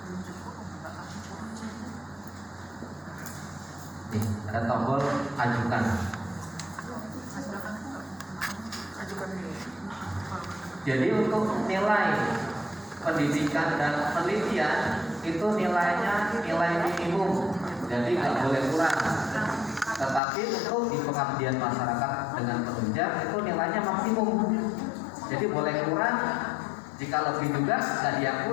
Nih, ada tombol ajukan. Jadi untuk nilai pendidikan dan penelitian itu nilainya nilai minimum, jadi nggak boleh kurang. Tetapi untuk di pengabdian masyarakat dengan penunjang itu nilainya maksimum, jadi boleh kurang. Jika lebih juga nggak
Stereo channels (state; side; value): drops out; right; at 20.2 s